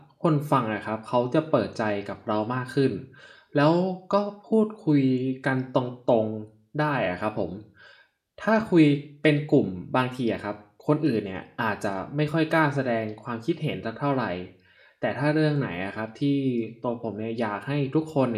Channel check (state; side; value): identical; both; correlation 1.00